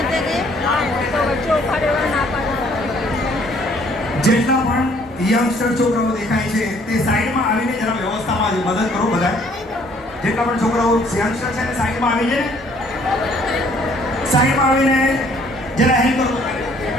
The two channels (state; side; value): normal; both; correlation 0.61